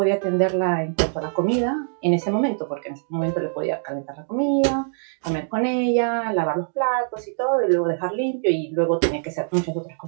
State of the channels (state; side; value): silent; left; digital silence